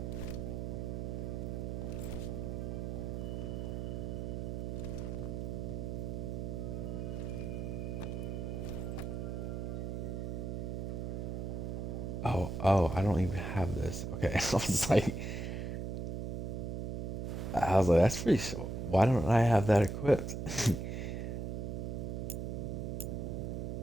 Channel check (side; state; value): right; noise; hum, 3 dB below the sound